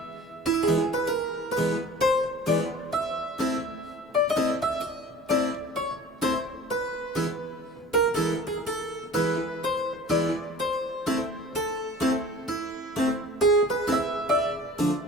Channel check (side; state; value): both; normal; correlation 0.44